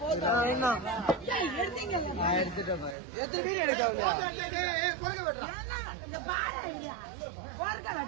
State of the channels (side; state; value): left; drops out; at 3.0 s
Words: எடுத்துட்டேன் எத்தனை பேர் எடுக்கலையா